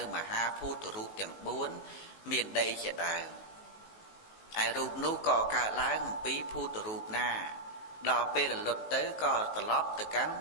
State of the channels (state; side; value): late; right; 19 ms